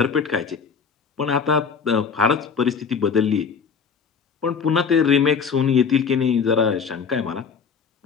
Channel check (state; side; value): quieter; right; 6.0 dB